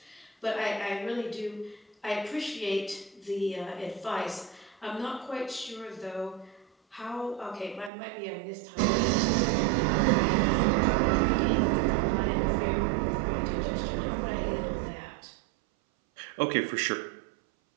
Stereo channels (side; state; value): left; drops out; at 7.9 s